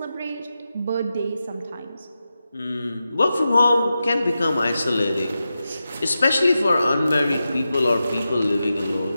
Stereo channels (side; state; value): both; inverted; correlation -0.91